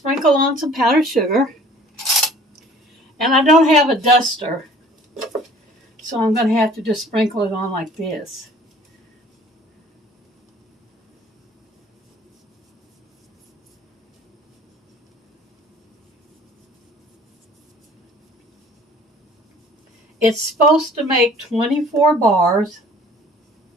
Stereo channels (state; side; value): normal; both; correlation 0.51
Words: on some powdered sugar. And I don't have a duster, so I'm going to have to just sprinkle it on like this. It's supposed to make 24 bars,